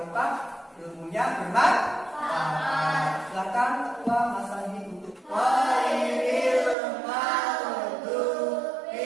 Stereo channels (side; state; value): left; drops out; at 6.8 s